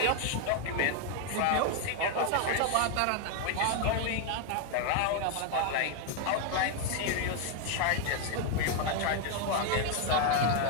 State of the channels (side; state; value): both; different; correlation 0.01